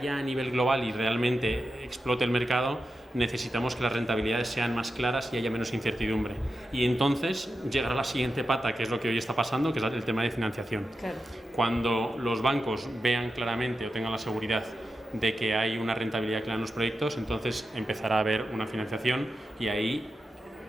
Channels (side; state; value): both; normal; correlation 0.90